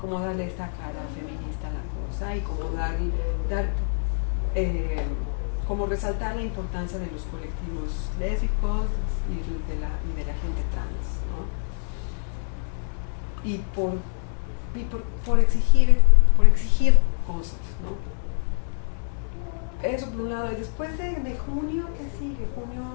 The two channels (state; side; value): silent; right; digital silence